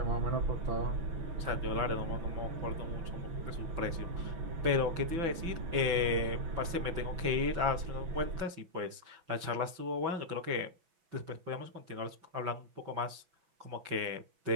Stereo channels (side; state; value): left; late; 6.0 ms